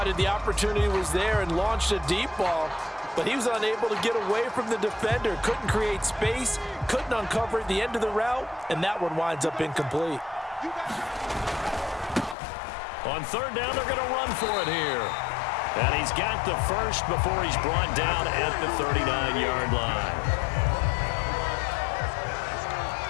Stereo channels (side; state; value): right; drops out; at 12.4 s